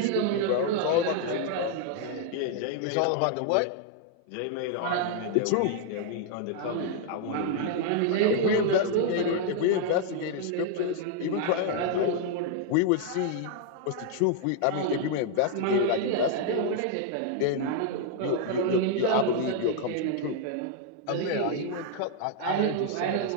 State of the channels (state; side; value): different; both; correlation 0.00